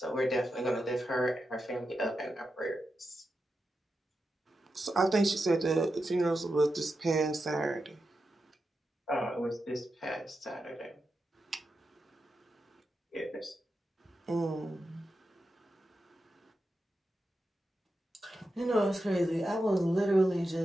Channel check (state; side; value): normal; both; correlation 0.89